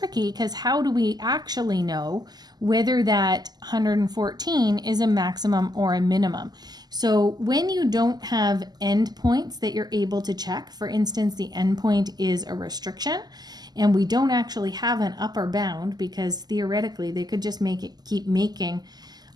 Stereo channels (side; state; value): left; late; 0.20 ms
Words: because how do we actually know whether that 114 is a maximum or a minimum? So when you don't have endpoints that you're able to check, for instance, the endpoint is a restriction, and we don't actually have an upper bound because theoretically they could just keep making